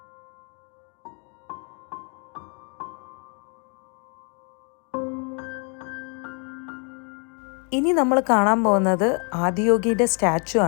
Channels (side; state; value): right; quieter; 38.0 dB